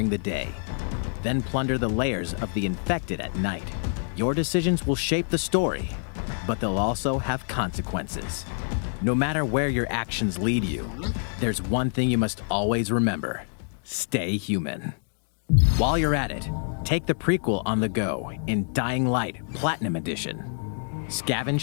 the day. Then plunder the layers of the infected at night. Your decisions will shape the story, but they'll also have consequences. No matter where your actions lead you, there's one thing you must always remember. Stay human. While you're at it, take the prequel on the go in Dying Light Platinum Edition.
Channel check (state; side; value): silent; right; digital silence